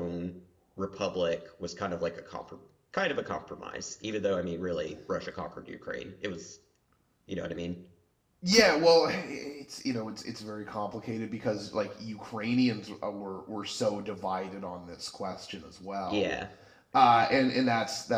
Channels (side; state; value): both; identical; correlation 1.00